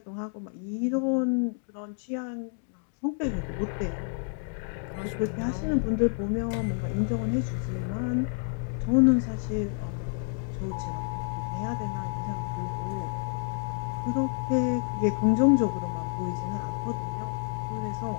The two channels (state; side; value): silent; right; 58 dB below the other